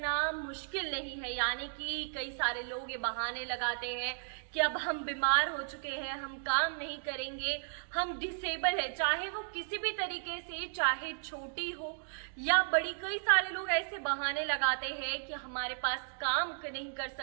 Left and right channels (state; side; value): silent; left; digital silence